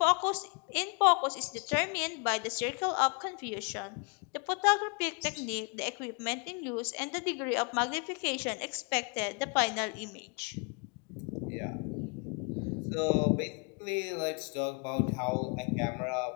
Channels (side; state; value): right; quieter; 35.6 dB